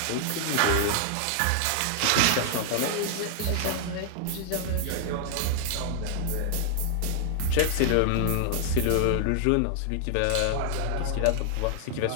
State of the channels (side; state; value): both; different; correlation 0.00